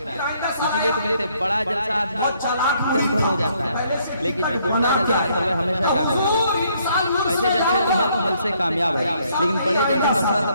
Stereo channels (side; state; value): both; inverted; correlation -0.68